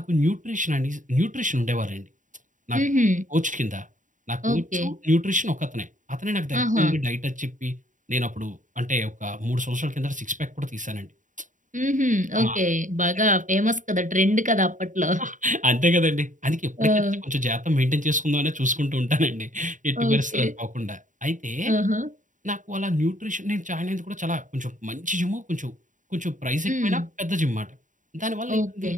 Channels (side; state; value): left; late; 0.37 ms